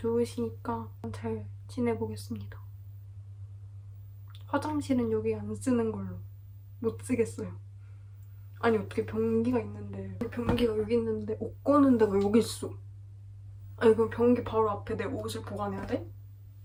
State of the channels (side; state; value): both; identical; correlation 1.00